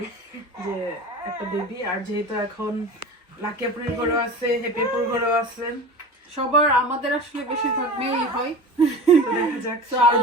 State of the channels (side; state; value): both; normal; correlation 0.33